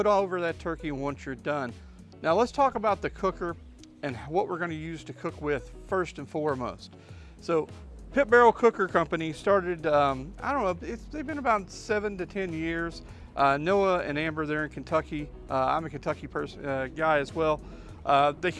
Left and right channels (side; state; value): both; identical; correlation 1.00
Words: over that turkey once you're done. Now let's talk about the cooker and what we're gonna use to cook with first and foremost. So Pit Barrel Cooker Company started, I don't know, they've been about 7 to 10 years. Noah and Amber, they're in Kentucky. I'm a Kentucky guy as well. They